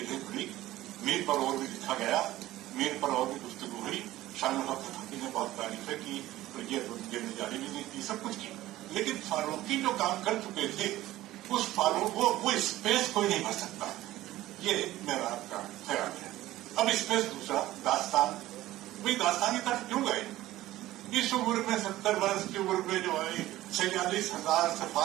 کھلی، میر پر اور بھی لکھا گیا، میر پر اور بھی گفتگو ہوئی. شان الحق فقی نے بہت تعریفیں کی، یہ جاری بھی کی، سب کچھ کی. لیکن فاروقی جو کام کر چکے تھے اس فاروق وہ اسپیس کوئی نہیں بھر سکتا. یہ میرا آپ کا خیال ہے. اب اسپیس دوسرا داستان، وہی داستان کی طرف کیوں گئے؟ اس عمر میں 70 برس کی عمر میں جو ہے 46,000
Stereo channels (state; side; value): quieter; left; 15.8 dB